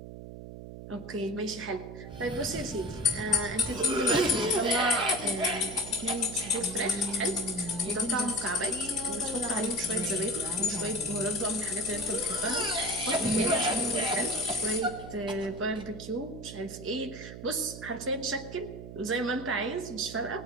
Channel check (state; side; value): noise; right; hum, 12 dB below the sound